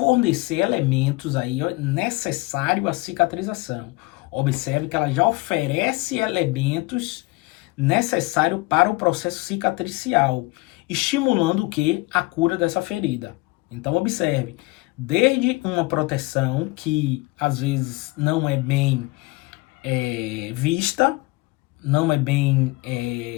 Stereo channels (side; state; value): right; quieter; 22.8 dB